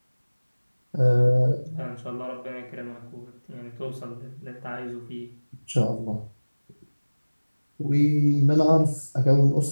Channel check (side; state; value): both; inverted; correlation -1.00